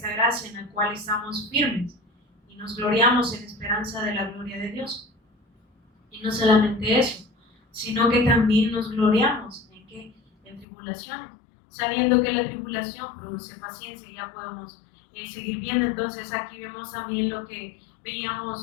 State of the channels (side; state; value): right; drops out; at 10.7 s